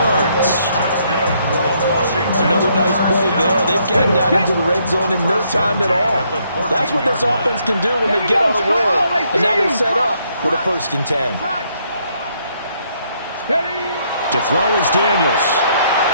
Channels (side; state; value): both; inverted; correlation -0.71